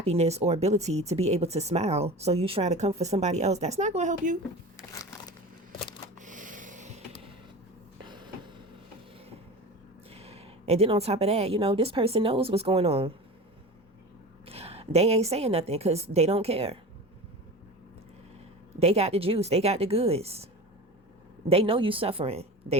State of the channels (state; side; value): normal; both; correlation 0.32